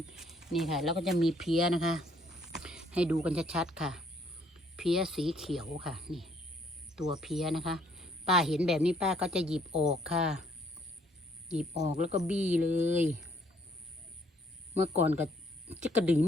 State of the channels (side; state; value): both; normal; correlation 0.65